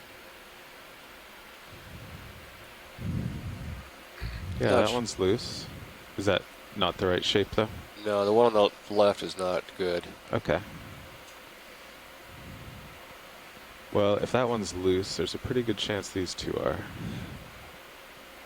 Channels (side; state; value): both; identical; correlation 1.00